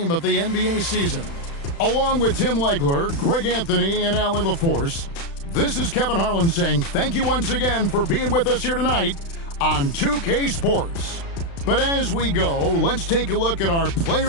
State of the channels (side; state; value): right; late; 36 ms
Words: of the NBA season. Along with Tim Legler, Greg Anthony, and Allie LaForce, this is Kevin Harlan saying thank you once again for being with us here tonight on 2K Sports. But as we go, let's take a look at our